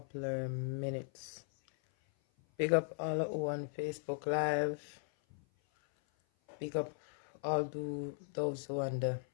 of minutes. Big up all who on Facebook Live. Big up all those who on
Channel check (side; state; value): right; silent; 52 dB below the other